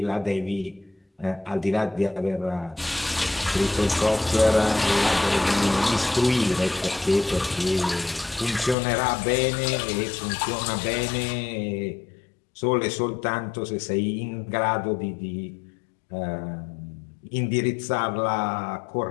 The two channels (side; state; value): right; drops out; at 8.8 s